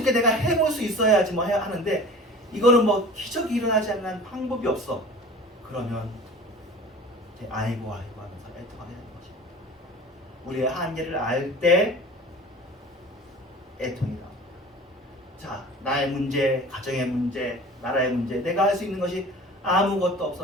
내가 해볼 수 있어야지 뭐 해야 하는데 이거는 뭐 기적이 일어나지 않는 방법이 없어. 그러면 이제 아이고 하면서 애통하게 되는 것입니다. 우리의 한계를 알 때 애통이 나옵니다. 자, 나의 문제, 가정의 문제, 나라의 문제, 내가 할 수 있는 것이 아무것도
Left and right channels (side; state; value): both; normal; correlation 0.41